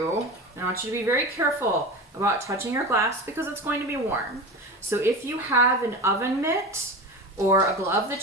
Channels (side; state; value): both; normal; correlation 0.28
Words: I want you to be very careful about touching your glass because it's going to be warm. So if you have an oven mitt or a glove